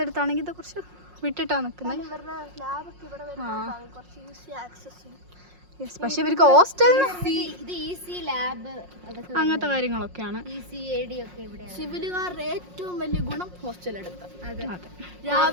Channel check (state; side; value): late; left; 5.5 ms